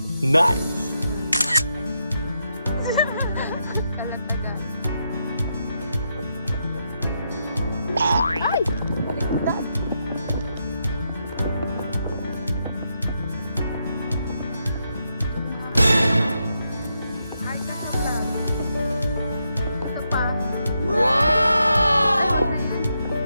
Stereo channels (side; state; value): both; inverted; correlation -0.82